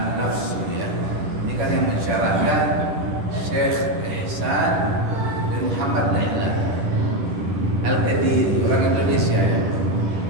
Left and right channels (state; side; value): late; left; 10 ms